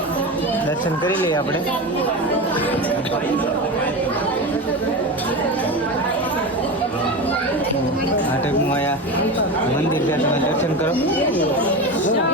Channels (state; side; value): normal; both; correlation 0.23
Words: દર્શન કરી લઈએ આપણે. આ ટાઈપનું અહીંયા મંદિર છે, તમે દર્શન કરો.